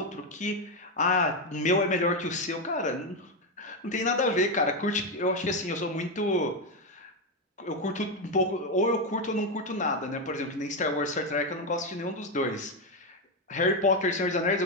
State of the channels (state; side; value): normal; both; correlation 0.07